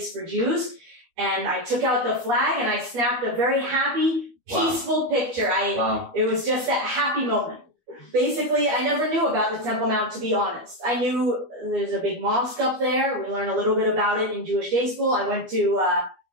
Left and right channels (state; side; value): late; left; 12 ms